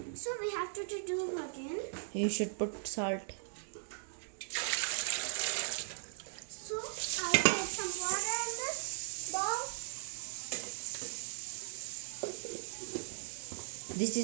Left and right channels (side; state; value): left; silent; digital silence